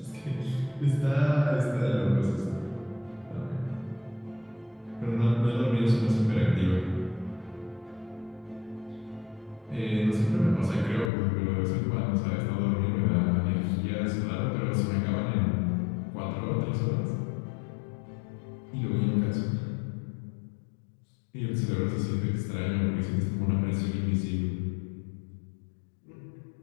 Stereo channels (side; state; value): right; drops out; at 11.1 s